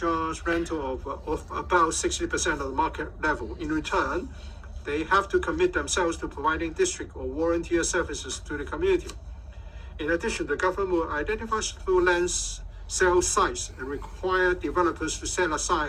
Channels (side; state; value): both; identical; correlation 1.00